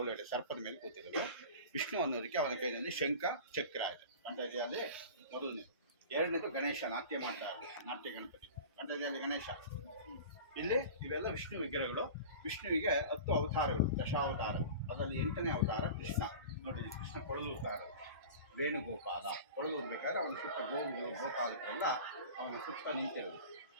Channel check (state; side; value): inverted; both; correlation -0.35